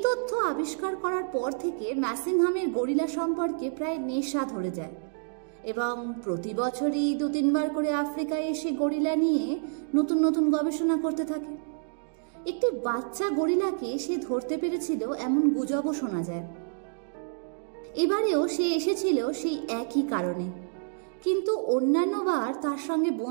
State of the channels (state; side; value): silent; left; digital silence